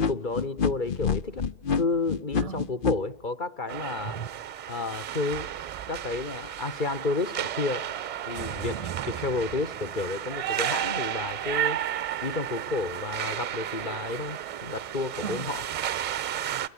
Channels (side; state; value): right; late; 1.6 ms